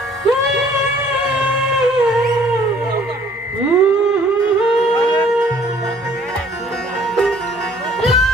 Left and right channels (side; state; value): both; normal; correlation 0.58